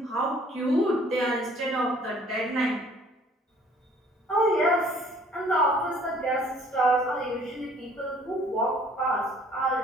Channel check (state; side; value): normal; both; correlation 0.57